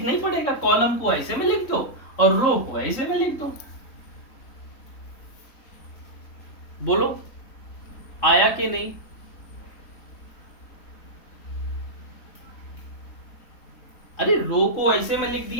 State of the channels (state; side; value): late; right; 3.6 ms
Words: ही पड़ेगा। कॉलम को ऐसे में लिख दो और रो को ऐसे में लिख दो। बोलो आया कि नहीं। अरे रो को ऐसे में लिख